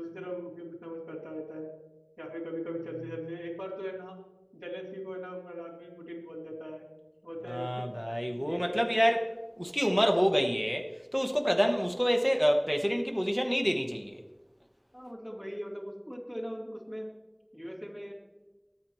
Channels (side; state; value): both; identical; correlation 1.00